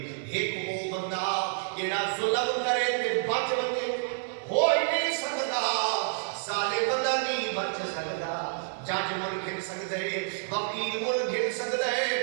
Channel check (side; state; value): left; silent; 59 dB below the other